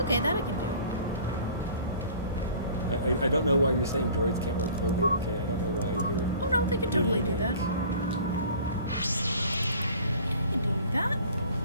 Okay, that I can do. I don't know why you're saying droids can't wear clothing, okay? I don't know why you're... Oh no, they can totally do that. They can do that.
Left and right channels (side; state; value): both; inverted; correlation -0.47